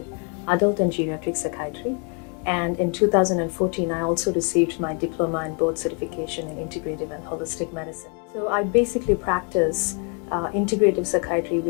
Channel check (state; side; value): quieter; right; 36.9 dB